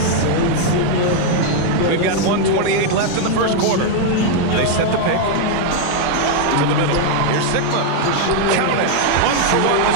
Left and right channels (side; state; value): both; different; correlation 0.00